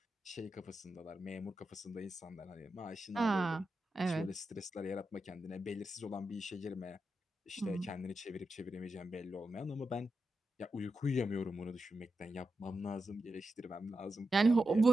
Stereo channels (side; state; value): both; normal; correlation 0.89